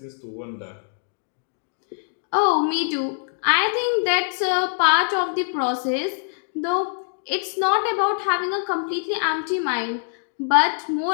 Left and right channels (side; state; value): right; silent; digital silence